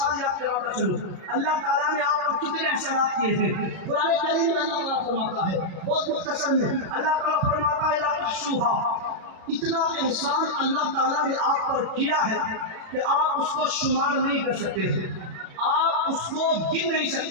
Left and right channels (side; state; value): left; late; 36 ms